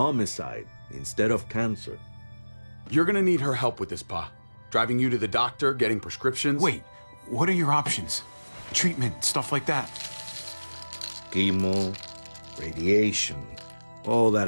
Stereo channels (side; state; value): both; inverted; correlation -1.00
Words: instead of cancer. You're gonna need her help with this, Pa. Driving you to the doctor, getting prescriptions. Wait, what are your options? Treatment, stuff like that. Chemo, radiation, all that